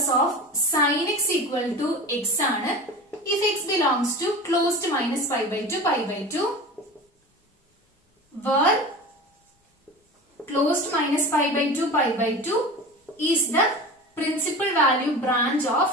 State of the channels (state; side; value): normal; both; correlation 0.33